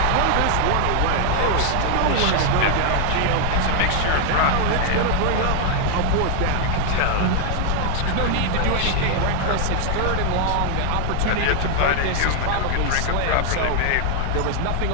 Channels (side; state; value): both; different; correlation 0.00